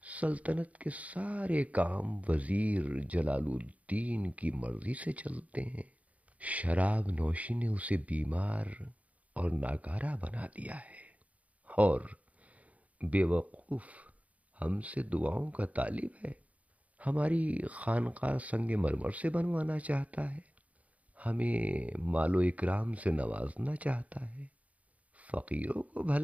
سلطنت کے سارے کام وزیر جلال الدین کی مرضی سے چلتے ہیں۔ شراب نوشی نے اسے بیمار اور ناکارہ بنا دیا ہے، اور بے وقوف ہم سے دعاؤں کا طالب ہے۔ ہماری خانقاہ سنگ مرمر سے بنوانا چاہتا ہے، ہمیں مال و اکرام سے نوازنا چاہتا ہے۔ فقیروں کو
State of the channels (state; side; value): late; left; 0.069 ms